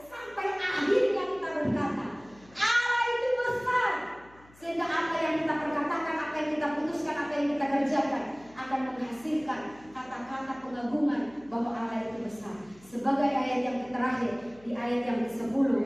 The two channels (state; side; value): noise; left; hum, 26 dB below the sound